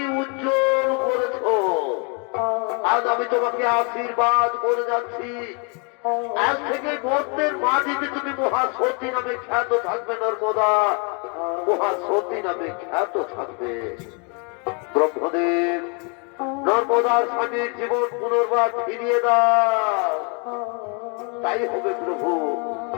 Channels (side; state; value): right; quieter; 35.4 dB